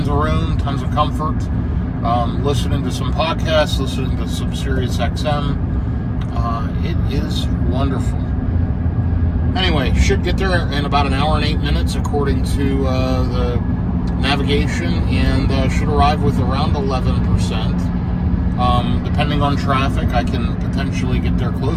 of room, tons of comfort. Listening to some podcasts, listening to some Sirius XM. It is wonderful. Anyway, should get there in about an hour and 8 minutes according to the navigation, and should arrive with around 11%. Depending on traffic, I can potentially get there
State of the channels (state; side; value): identical; both; correlation 1.00